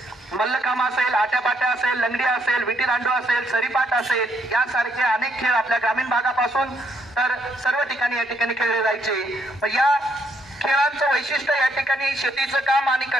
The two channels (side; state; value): both; normal; correlation 0.72